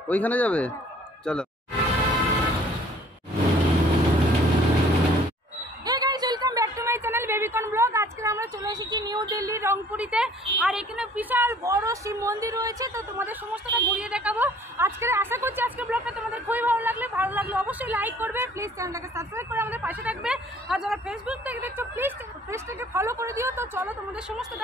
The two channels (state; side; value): normal; both; correlation 0.55